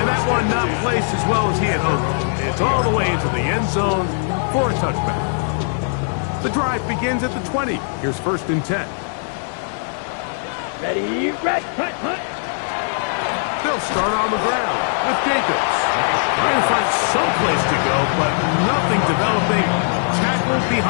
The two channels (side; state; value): right; silent; digital silence